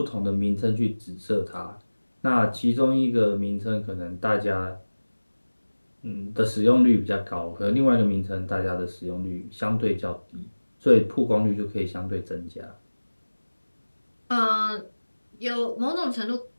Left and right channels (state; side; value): inverted; both; correlation -1.00